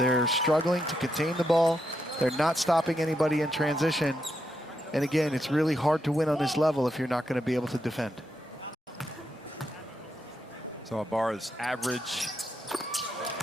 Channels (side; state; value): both; normal; correlation 0.82